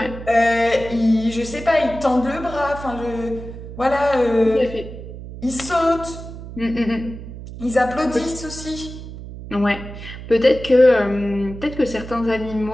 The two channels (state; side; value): noise; right; hum, 12 dB below the sound